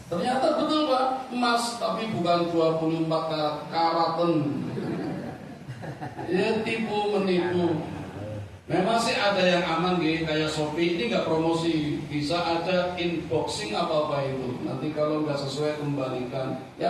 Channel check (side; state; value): both; identical; correlation 1.00